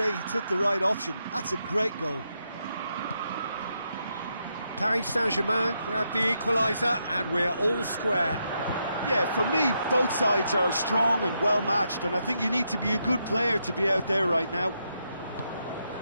he took the right option. That's a great goal. Paris Saint-Germain grabbed the equaliser, and we're all square. Yeah, for me, both sides are strong and well matched, and I think you need to be a good player to be out there right now.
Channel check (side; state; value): both; inverted; correlation -0.81